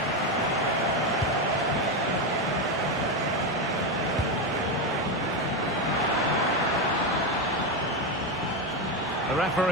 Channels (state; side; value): normal; both; correlation 0.11